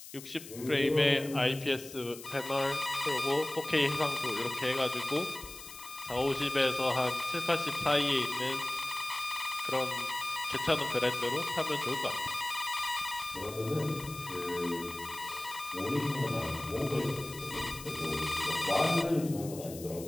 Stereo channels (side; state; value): left; noise; hiss, 14 dB below the sound